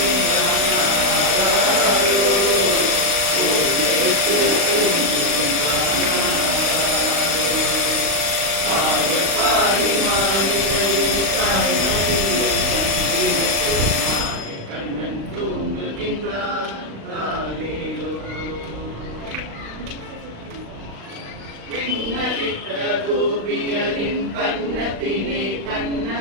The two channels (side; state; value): left; late; 35 ms